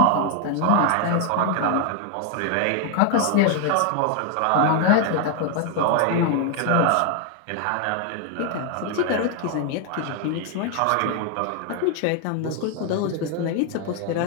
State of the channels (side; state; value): both; different; correlation 0.01